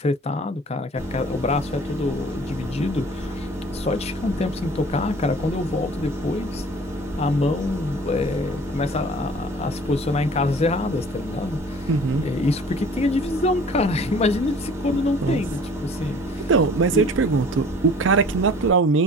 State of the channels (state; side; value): normal; both; correlation 0.48